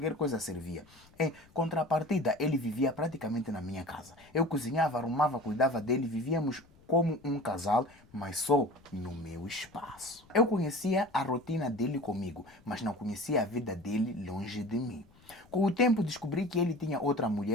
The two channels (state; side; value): noise; left; rumble, 27 dB below the sound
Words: coisa servia. Em contrapartida, ele vivia praticamente na minha casa. Eu cozinhava, arrumava, cuidava dele, vivíamos como um casal, mas só no meu espaço. Eu conhecia a rotina dele comigo, mas não conhecia a vida dele longe de mim. Com o tempo descobri que ele tinha outra